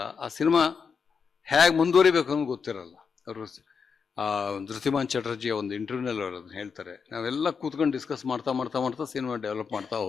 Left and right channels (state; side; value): quieter; right; 5.9 dB